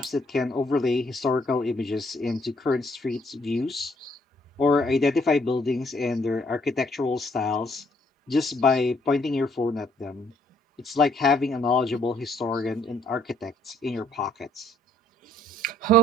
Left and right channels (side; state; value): both; normal; correlation 0.66